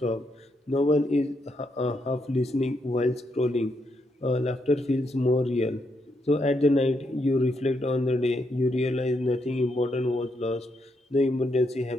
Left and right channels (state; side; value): normal; both; correlation 0.79